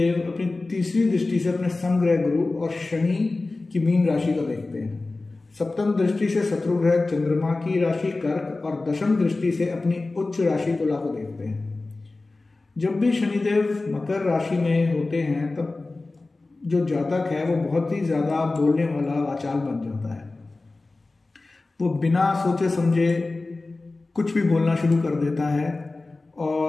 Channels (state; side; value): quieter; right; 3.3 dB